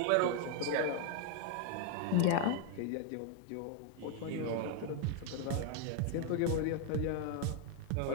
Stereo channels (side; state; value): both; different; correlation 0.00